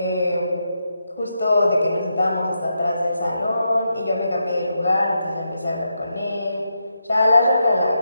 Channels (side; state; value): both; inverted; correlation -0.84